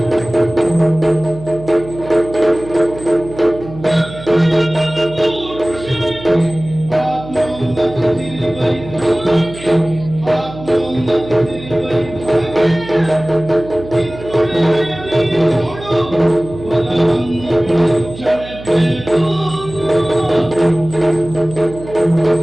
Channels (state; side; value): noise; right; hum, 15 dB below the sound